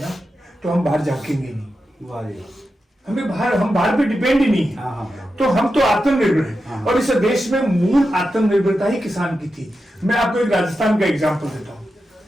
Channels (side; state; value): both; normal; correlation 0.90